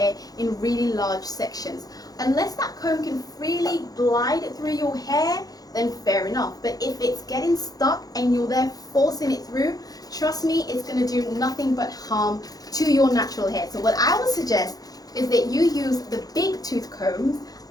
in really large sections. Unless that comb can freely glide through your hair, then fair enough. But if it's getting stuck and you're there forcing it through, trust me, it's going to do nothing but harm to your natural hair. So what I would suggest is that you use the big tooth combs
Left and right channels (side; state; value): right; late; 0.18 ms